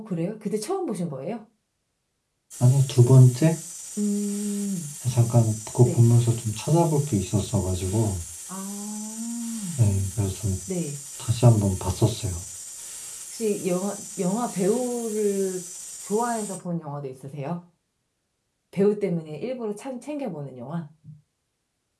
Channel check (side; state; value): both; identical; correlation 1.00